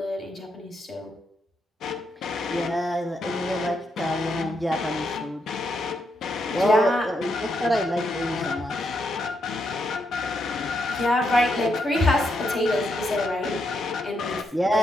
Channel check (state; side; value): normal; both; correlation 0.80